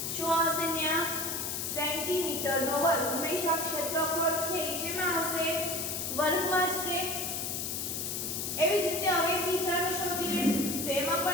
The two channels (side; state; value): left; noise; hiss, 3 dB below the sound